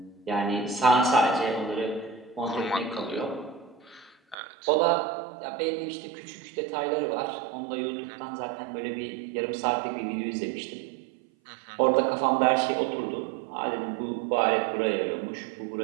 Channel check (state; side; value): drops out; left; at 4.4 s